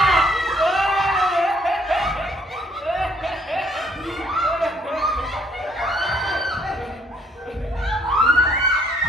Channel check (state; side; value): normal; both; correlation 0.65